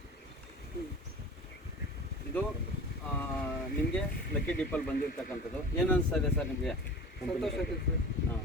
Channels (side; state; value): both; normal; correlation 0.38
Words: ಇದು ನಿಮಗೆ ಲಕ್ಕಿ ಡಿಪ್ಪಲ್ಲಿ ಬಂದಿರ್ತಕ್ಕಂಥದ್ದು. ಏನು ಅನಿಸ್ತಾ ಇದೆ ಸರ್ ನಿಮಗೆ? ಸಂತೋಷ ಆಗಿದೆ ಸರ್. ಹಾಂ,